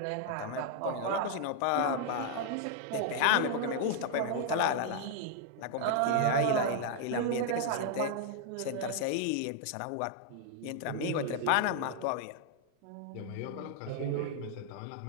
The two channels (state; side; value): different; both; correlation 0.00